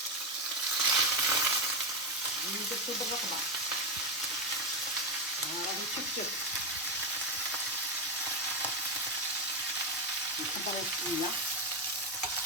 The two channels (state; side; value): normal; both; correlation 0.10